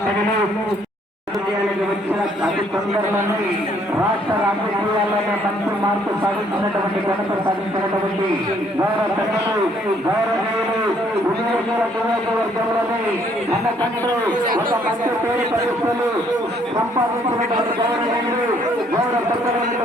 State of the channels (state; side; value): normal; both; correlation 0.65